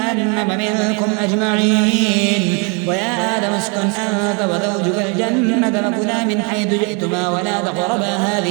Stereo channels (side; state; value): left; quieter; 33.5 dB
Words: منكم أجمعين ويا آدم اسكن أنت وزوجك الجنة فكلا من حيث جئتما ولا تقربا